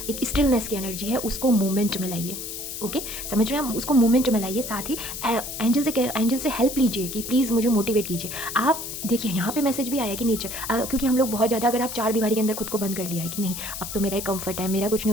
एक स्टिलनेस की एनर्जी है उसको मूवमेंट में लाइए। ओके, समझ रहे हैं? उसको मूवमेंट में लाइए। साथ ही एंजल से हेल्प लीजिए कि प्लीज़ मुझे मोटिवेट कीजिए। आप देखिए यहाँ पे मैसेज भी आया कि नेचर, क्योंकि हम लोग बहुत ज़्यादा, अगर आप 4 दीवारी के अंदर खुद को बंद कर लिया है कि नहीं अब तो मेरा कंफर्ट है, मेरा कुछ नहीं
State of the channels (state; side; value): noise; left; hiss, 7 dB below the sound